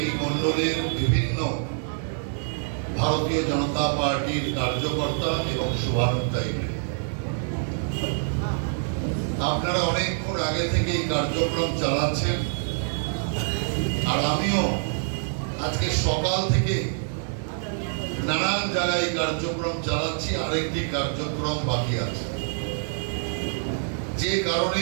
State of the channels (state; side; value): silent; left; 61 dB below the other